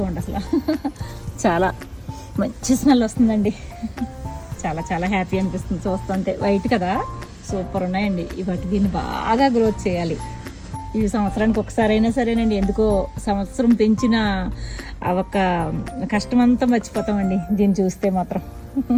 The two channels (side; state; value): both; identical; correlation 1.00